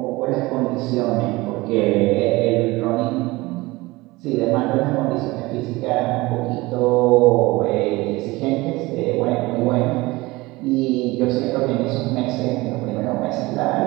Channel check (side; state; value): left; quieter; 21.2 dB